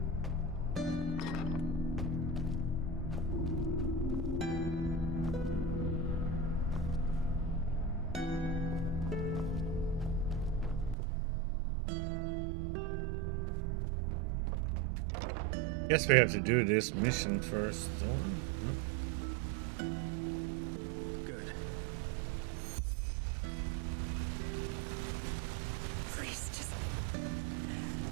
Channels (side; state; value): left; drops out; at 11.0 s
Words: Guess we have to do this mission first. Good. Please just